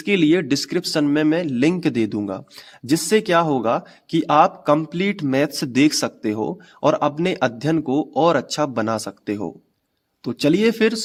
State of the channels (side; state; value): both; identical; correlation 1.00